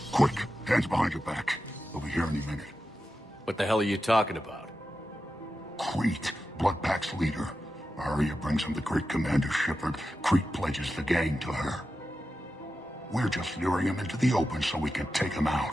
Quick, hands behind your back. They'll be here any minute. What the hell are you talking about? Crete, Bloodpack's leader. Arya brings him the great Commander Shepard. Crete pledges the gang to her. We're just luring him into the open so we can take him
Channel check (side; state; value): both; normal; correlation 0.91